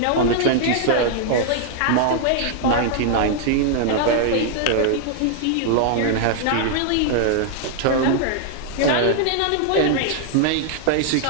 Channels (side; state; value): both; different; correlation 0.00